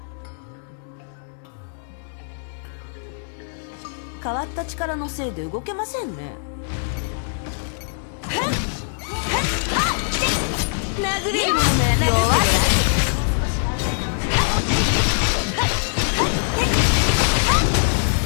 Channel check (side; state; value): right; silent; 64 dB below the other